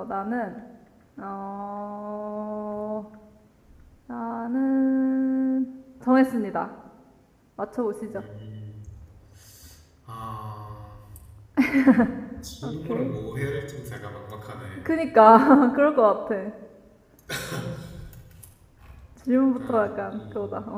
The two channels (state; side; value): identical; both; correlation 1.00